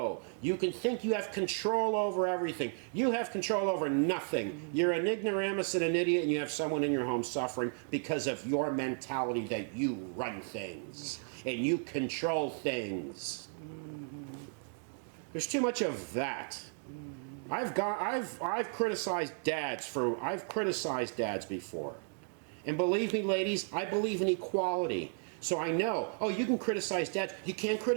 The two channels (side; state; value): left; silent; 55 dB below the other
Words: You can think you have control over everything. You have control over nothing. You're an ignoramus and an idiot, and you have someone in your home suffering because of your mentality that you run things and you control things. There's too much of that. I've criticized dads before. And believe me, ladies, I believe in equality. So I know, oh, you can criticize dads. You can't